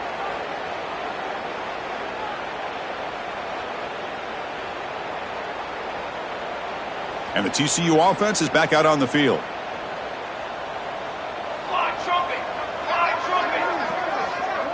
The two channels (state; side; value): identical; both; correlation 1.00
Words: And the TCU offense is back out on the field.